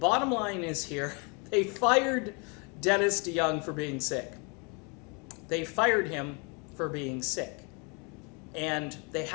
line is here, they fired Dennis DeYoung for being sick. They fired him for being sick. And they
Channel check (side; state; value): right; quieter; 32.8 dB